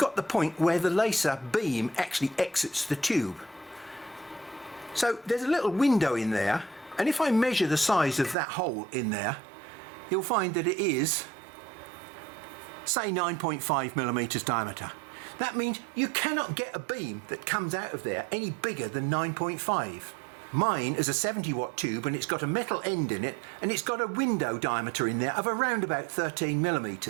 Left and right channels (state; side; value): drops out; left; at 8.3 s